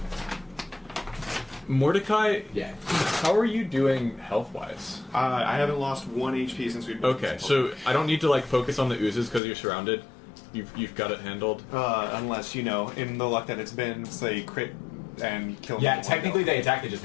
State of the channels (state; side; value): drops out; right; at 9.4 s